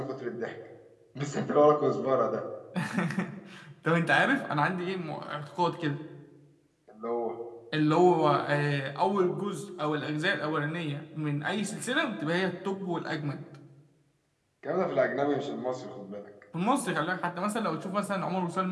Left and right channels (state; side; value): identical; both; correlation 1.00